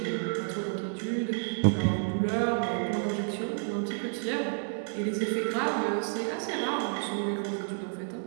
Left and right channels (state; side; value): silent; left; 58 dB below the other